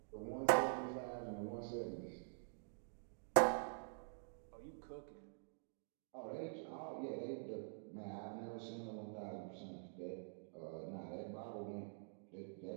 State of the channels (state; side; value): silent; left; digital silence